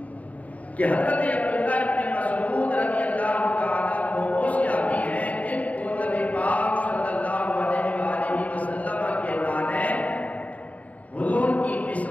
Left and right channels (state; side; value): late; right; 0.070 ms